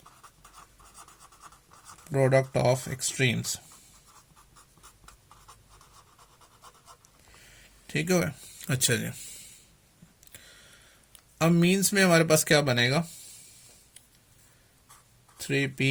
product of extremes, ठीक है। अच्छा जी, अब मीन्स में हमारे पास क्या बनेगा,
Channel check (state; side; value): identical; both; correlation 1.00